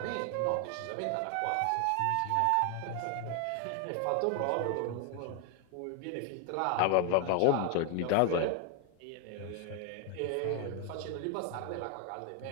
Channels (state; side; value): different; both; correlation 0.01